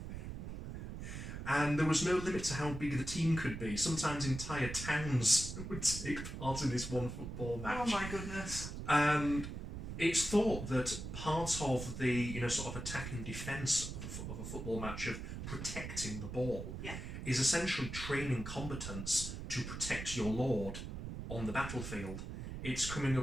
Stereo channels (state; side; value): noise; right; rumble, 7 dB below the sound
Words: And there was no limit to how big the team could be. Sometimes entire towns would take part in this one football match. Oh my goodness. And it's thought that part of the sort of attack and defence of a football match, of protecting the ball, is essentially training combatants to protect your lord on the battlefield. It's coming